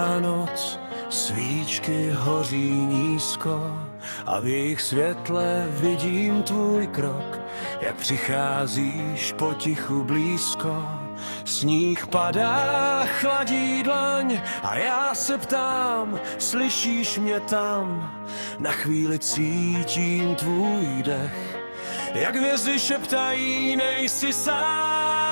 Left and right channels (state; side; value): inverted; both; correlation -1.00